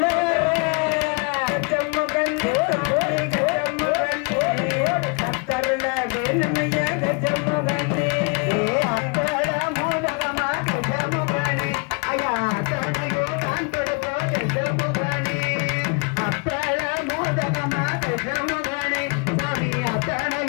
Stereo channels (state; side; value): quieter; right; 35.3 dB